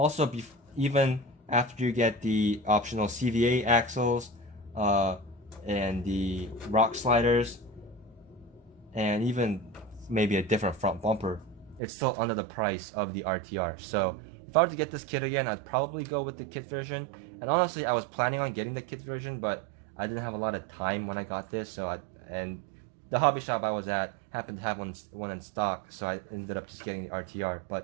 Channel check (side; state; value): left; drops out; at 11.8 s